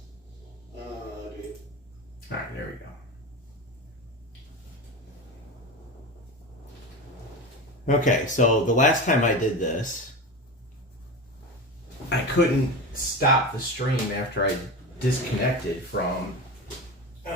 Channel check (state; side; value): normal; both; correlation 0.25